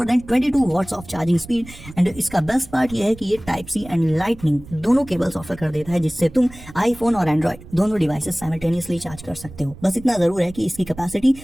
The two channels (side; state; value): right; noise; rumble, 18 dB below the sound